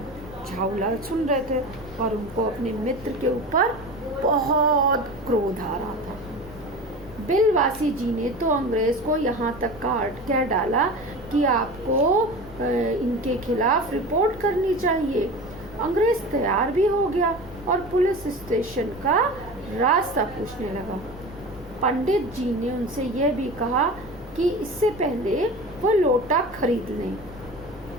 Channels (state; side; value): noise; right; rumble, 20 dB below the sound